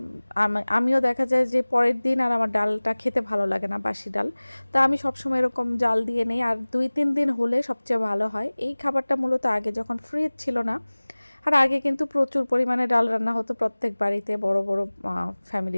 আমিও দেখা যায় যে পরের দিন আর আমার ডালটা খেতে ভালো লাগে না, বাসি ডাল। তো আমি সবসময় এরকম জাল দিয়ে নেই, আর 2-3 দিন হলে সবচেয়ে ভালো হয়। এই খাবারটা মূলত আগে যখন ফ্রিজ ছিল না, আর আগে কিন্তু প্রচুর পরিমাণে ডাল রান্না হতো, প্রত্যেক বাড়িতে বড় বড়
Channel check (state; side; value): inverted; both; correlation -1.00